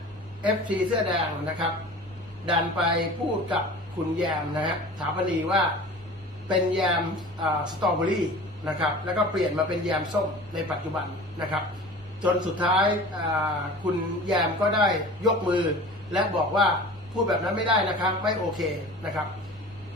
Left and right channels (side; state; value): both; normal; correlation 0.39